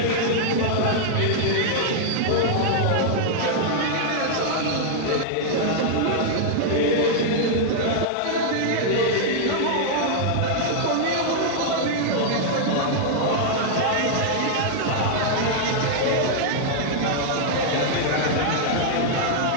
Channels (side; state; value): both; different; correlation -0.01